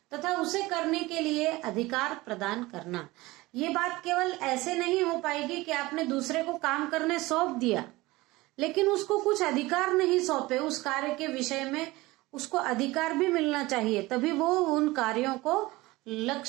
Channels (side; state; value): left; quieter; 20.4 dB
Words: तथा उसे करने के लिए अधिकार प्रदान करना। ये बात केवल ऐसे नहीं हो पाएगी कि आपने दूसरे को काम करने सौंप दिया लेकिन उसको कुछ अधिकार नहीं सौंपे, उस कार्य के विषय में उसको अधिकार भी मिलना चाहिए, तभी वो उन कार्यों को